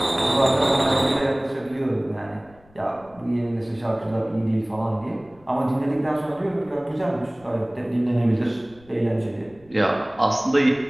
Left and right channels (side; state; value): left; noise; rumble, 27 dB below the sound